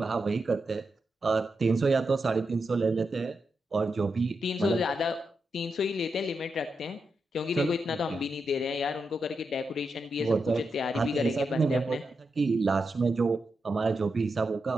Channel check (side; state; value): both; normal; correlation 0.86